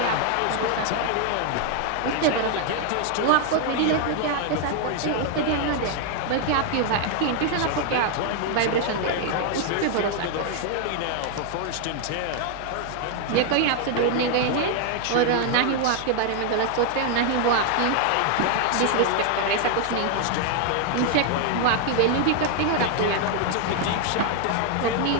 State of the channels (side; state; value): both; different; correlation 0.00